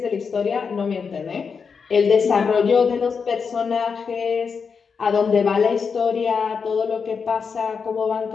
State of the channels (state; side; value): quieter; right; 5.7 dB